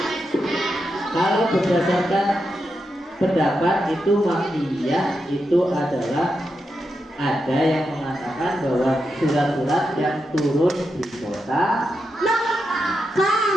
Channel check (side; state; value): both; normal; correlation 0.86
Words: Kalau berdasarkan pendapat itu Makkiyah itu adalah ada yang mengatakan bahwa surat-surat yang turun di kota